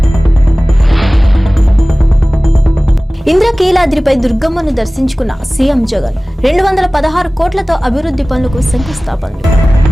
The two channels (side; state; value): both; normal; correlation 0.98